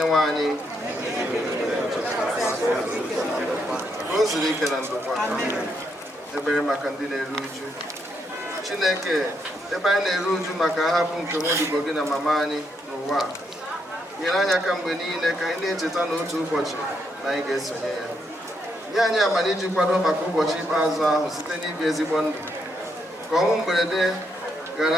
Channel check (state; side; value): normal; both; correlation 0.77